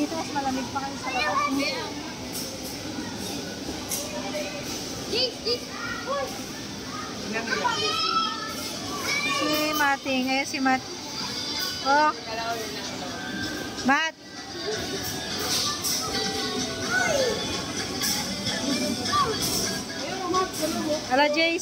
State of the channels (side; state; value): both; identical; correlation 1.00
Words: mas malamig pa kayo sa labas. Si Mating, si Matt. Matt. Ala,